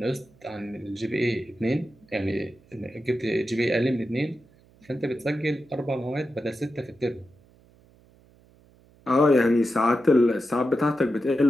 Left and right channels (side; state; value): right; noise; hum, 29 dB below the sound